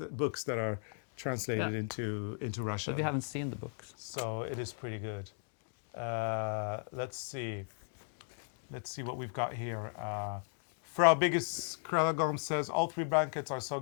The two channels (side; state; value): right; silent; digital silence